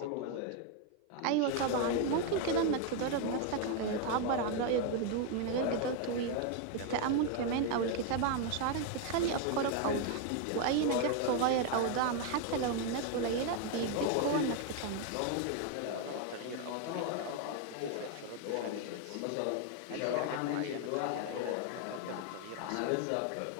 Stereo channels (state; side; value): different; both; correlation 0.01